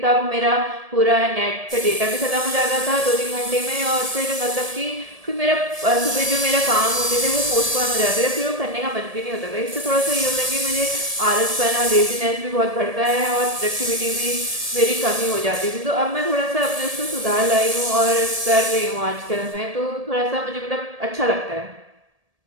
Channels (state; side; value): late; left; 1.7 ms